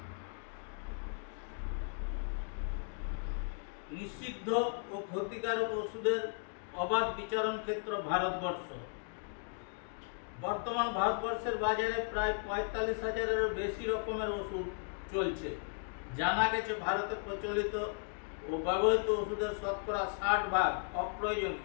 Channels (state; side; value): silent; right; 54 dB below the other